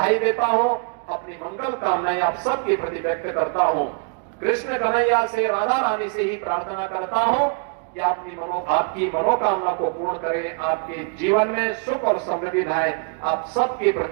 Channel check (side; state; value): left; quieter; 39.6 dB